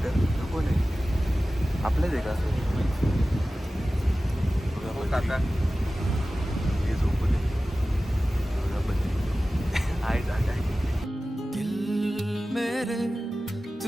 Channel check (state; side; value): normal; both; correlation 0.96